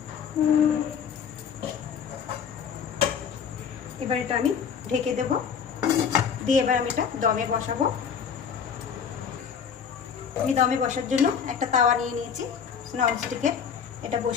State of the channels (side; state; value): right; quieter; 7.2 dB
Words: এবার এটা আমি ঢেকে দেব, দিয়ে এবার আমি এটা দমে বসাবো। আমি দমে বসার জন্য একটা তাওয়া নিয়ে নিয়েছি ননস্টিকের, এটা